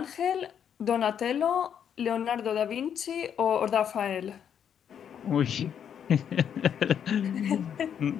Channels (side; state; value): right; quieter; 8.5 dB